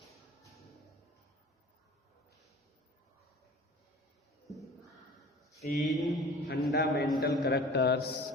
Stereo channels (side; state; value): both; normal; correlation 0.43